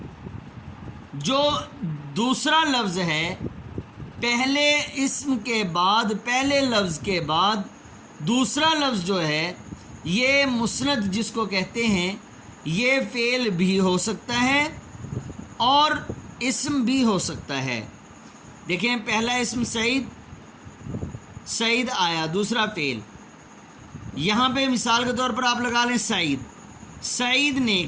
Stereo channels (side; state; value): both; identical; correlation 1.00